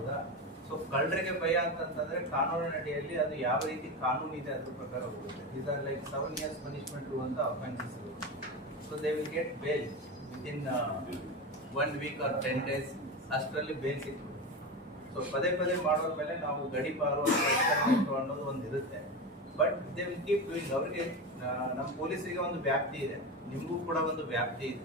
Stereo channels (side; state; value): both; normal; correlation 0.21